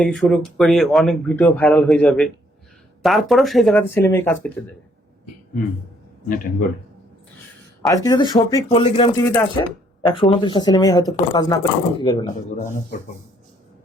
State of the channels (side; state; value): both; normal; correlation 0.66